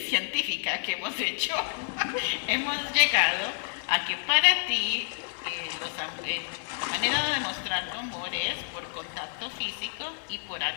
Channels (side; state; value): right; silent; digital silence